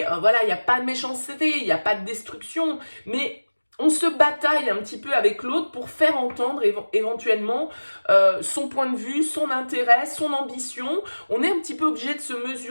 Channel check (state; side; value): inverted; both; correlation -1.00